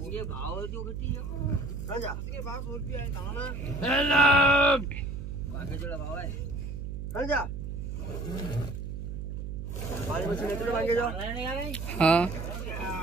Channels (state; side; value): noise; right; hum, 6 dB below the sound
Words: ये भाव जो घटी है चल जा इसके भाव 100 रुपया है दाना हेलो बाकी जोड़ा भाव है चल जा पानी में से मांगे जाओ हां